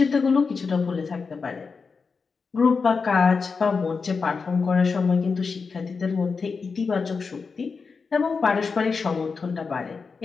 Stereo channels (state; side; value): quieter; right; 4.9 dB